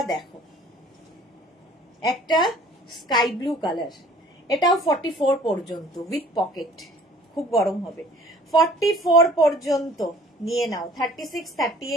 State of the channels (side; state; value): both; normal; correlation 0.52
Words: দেখো, একটা স্কাই ব্লু কালার। এটাও 44 পর্যন্ত উইথ পকেট, খুব গরম হবে। 44 পর্যন্ত নিয়ে নাও। 36,